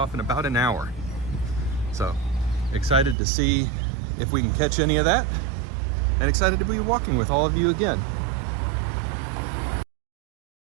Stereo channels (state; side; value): drops out; left; at 3.2 s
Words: in about an hour. So, excited to see if we can catch any of that, and excited to be walking with all of you again.